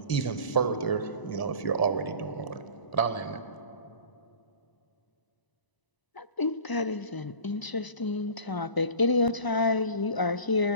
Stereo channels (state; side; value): late; right; 1.0 ms